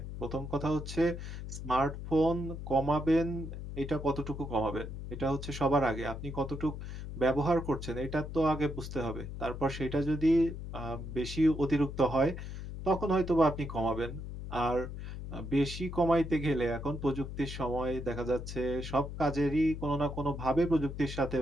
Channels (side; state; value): left; noise; hum, 8 dB below the sound